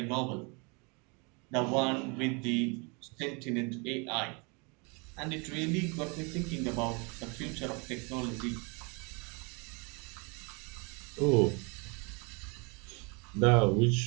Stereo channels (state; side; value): quieter; left; 31.4 dB